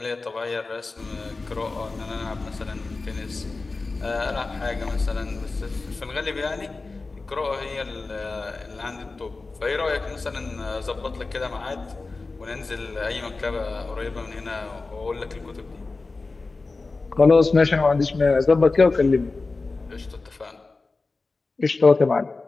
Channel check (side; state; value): right; quieter; 3.7 dB